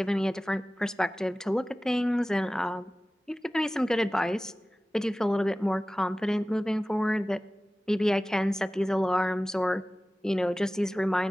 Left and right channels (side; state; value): both; normal; correlation 0.97